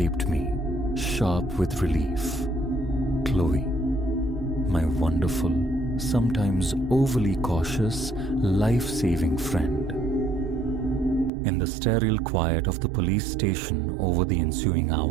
me, sharp with relief. Chloe, my wonderful, sometimes overly cautious, life-saving friend. In the sterile quiet of the police station over the ensuing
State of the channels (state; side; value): drops out; left; at 11.3 s